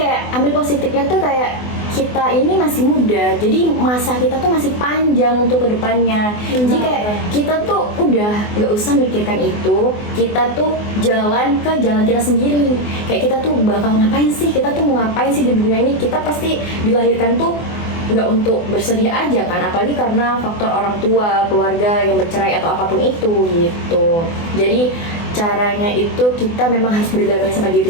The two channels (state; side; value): late; right; 24 ms